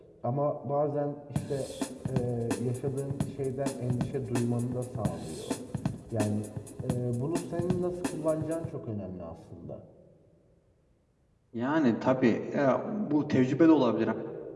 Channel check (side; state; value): both; identical; correlation 1.00